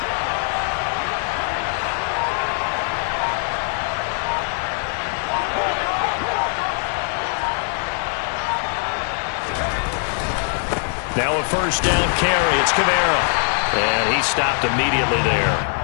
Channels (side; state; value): right; silent; 56 dB below the other